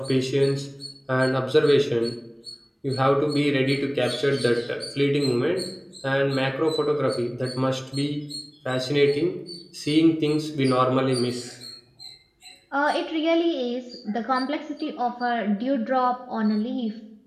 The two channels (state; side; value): identical; both; correlation 1.00